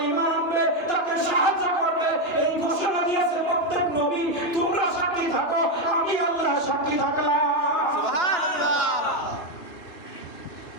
ঈমান আনবে, তাকে সাহায্য করবে, এই ঘোষণা দিয়েছে প্রত্যেক নবী তোমরা সাক্ষী থাকো, আমি আল্লাহ সাক্ষী থাকলাম। সুবহানাল্লাহ।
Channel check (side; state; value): right; late; 2.9 ms